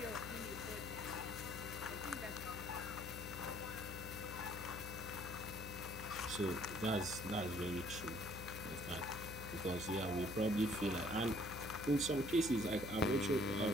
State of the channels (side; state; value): left; noise; hum, 10 dB below the sound